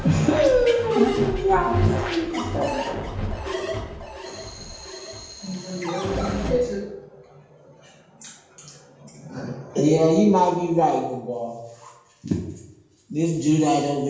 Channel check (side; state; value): both; identical; correlation 1.00